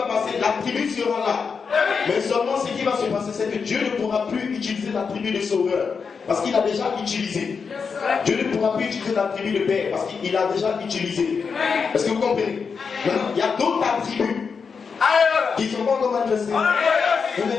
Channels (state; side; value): quieter; right; 5.6 dB